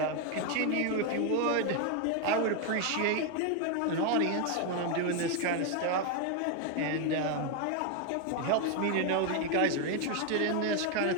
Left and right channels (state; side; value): different; both; correlation 0.01